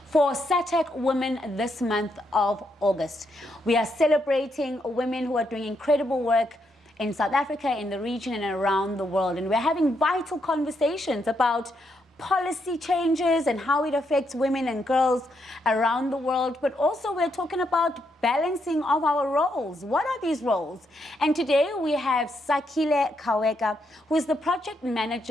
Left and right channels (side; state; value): both; normal; correlation 0.78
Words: for Sahtac Women this month of August. We are celebrating women who are doing incredible work in South Africa, in the region, and around the world. And we're having vital conversations about policy changes and how it affects women and girls around the world, but also we're talking about balancing of our roles. What are these roles? And today we have Sakhile Khaweka, who is the project